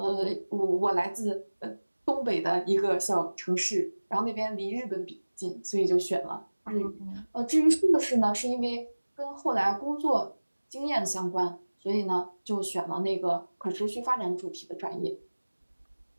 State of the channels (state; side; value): inverted; both; correlation -1.00